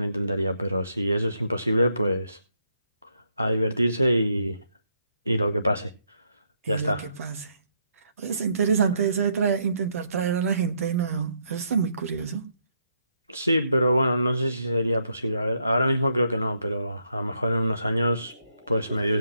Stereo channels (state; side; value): inverted; both; correlation -0.75